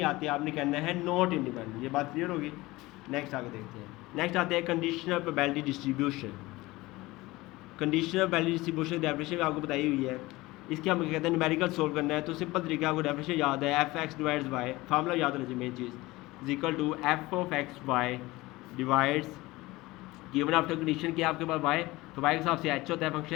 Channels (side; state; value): right; quieter; 20.1 dB